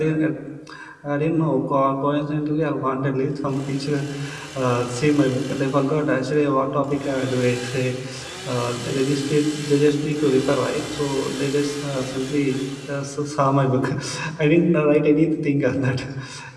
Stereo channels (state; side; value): identical; both; correlation 1.00